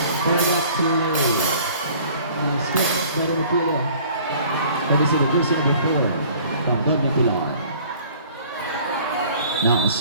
For the play. Split by the Mapilo. That is the jersey number 4 from Don Mapilo. Now,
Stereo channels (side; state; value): both; inverted; correlation -0.51